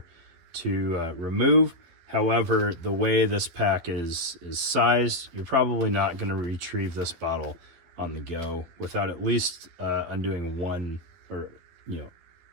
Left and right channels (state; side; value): late; left; 12 ms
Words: to remove. However, the way this pack is sized, you're probably not going to retrieve this bottle on the go without at least undoing one, or